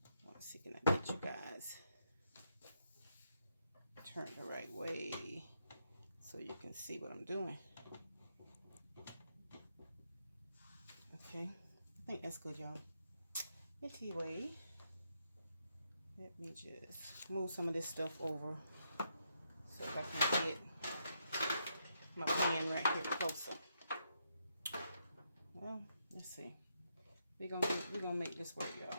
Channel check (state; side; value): inverted; both; correlation -0.79